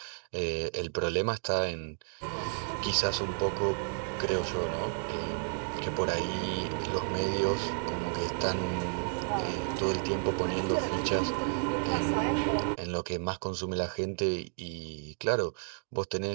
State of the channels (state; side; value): silent; left; 57 dB below the other